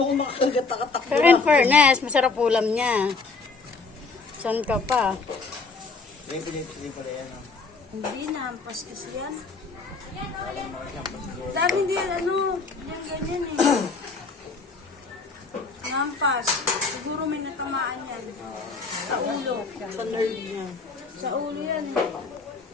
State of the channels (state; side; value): quieter; right; 4.2 dB